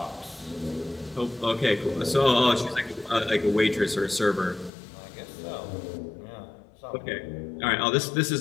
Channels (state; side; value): drops out; right; at 4.7 s